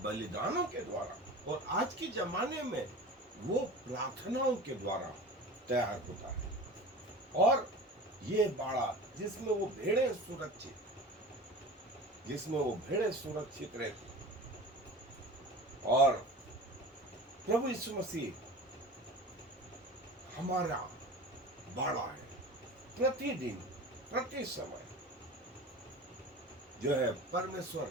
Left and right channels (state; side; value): normal; both; correlation 0.35